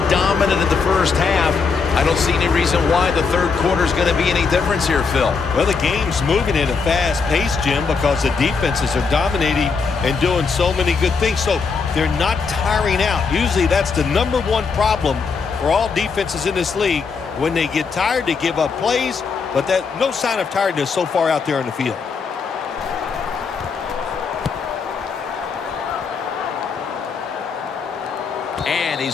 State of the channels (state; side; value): quieter; right; 5.2 dB